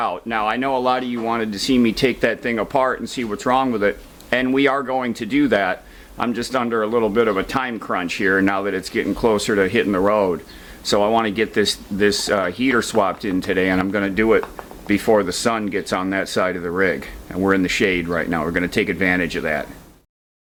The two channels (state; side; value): identical; both; correlation 1.00